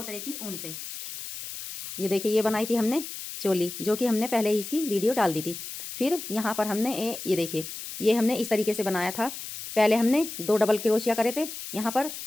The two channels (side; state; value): left; noise; hiss, 9 dB below the sound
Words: तरह की ऊन से। ये देखिए, ये बनाई थी हमने चोली, जो कि हमने पहले ही इसकी वीडियो डाल दी थी। फिर यहाँ पर हमने ये देखिए, ये हमने इस तरीके से बनाया था। पहले हमने 2 डबल क्रोशिया करे थे यहाँ पर।